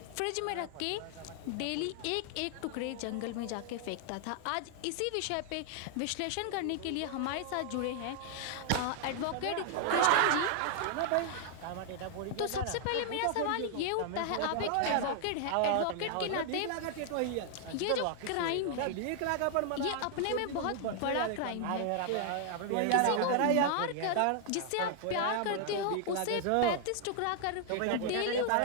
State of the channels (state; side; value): different; both; correlation 0.00